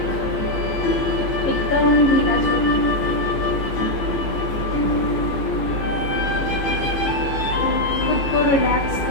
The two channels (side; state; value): right; late; 15 ms